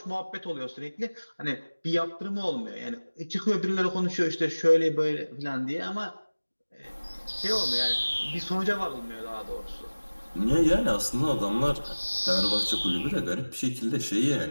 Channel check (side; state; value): both; inverted; correlation -1.00